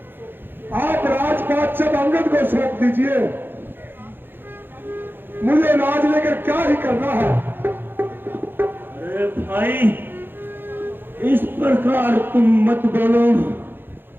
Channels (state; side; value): late; left; 0.10 ms